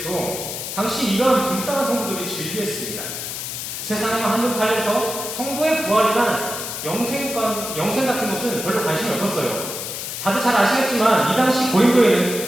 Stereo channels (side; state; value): left; noise; hiss, 6 dB below the sound